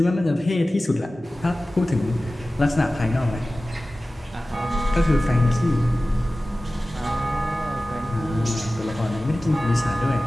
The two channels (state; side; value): normal; both; correlation 0.96